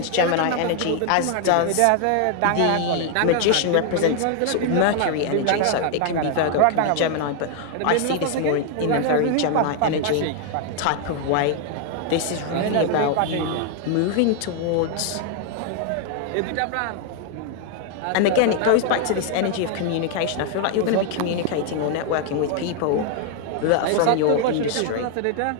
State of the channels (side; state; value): both; different; correlation 0.00